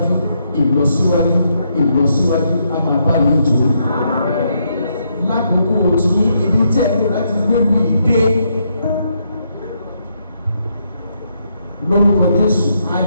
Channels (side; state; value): both; inverted; correlation -0.77